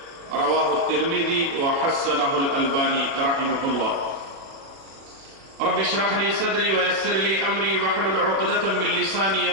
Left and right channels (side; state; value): left; late; 37 ms